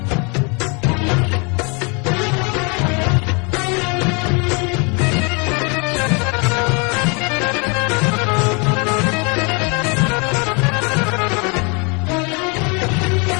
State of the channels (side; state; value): right; quieter; 32.2 dB